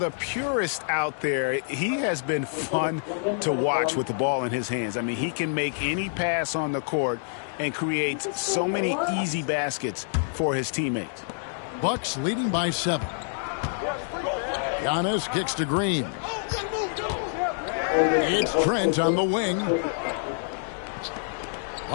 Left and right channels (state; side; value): silent; right; digital silence